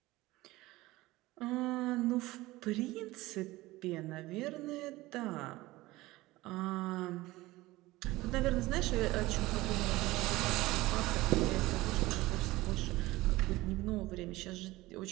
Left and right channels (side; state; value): left; quieter; 19.0 dB